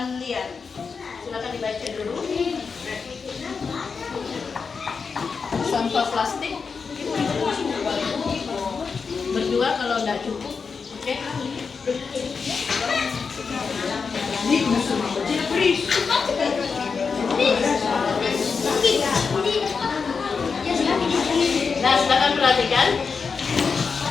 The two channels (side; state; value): right; quieter; 5.3 dB